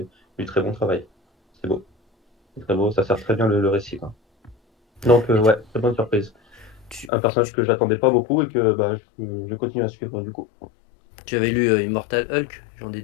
du très bon travail. C'est beau, c'est très beau, ça sert très bien le récit, quoi. Donc Et ouais, très bonne surprise. tu, Un personnage tu- que j'attendais pas beaucoup et que bah, je continue à suivre du coup. tu avais lu Immortal Hulk, j'en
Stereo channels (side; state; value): right; drops out; at 7.1 s